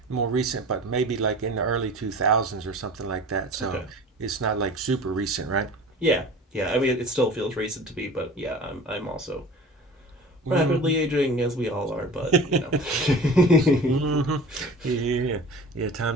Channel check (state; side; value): normal; both; correlation 0.40